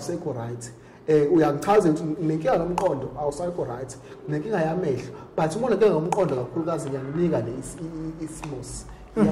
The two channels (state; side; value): identical; both; correlation 1.00